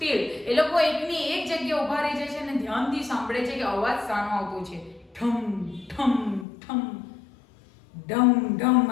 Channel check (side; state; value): right; drops out; at 6.5 s